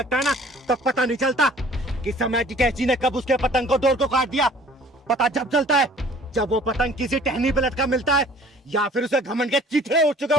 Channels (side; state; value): both; normal; correlation 0.52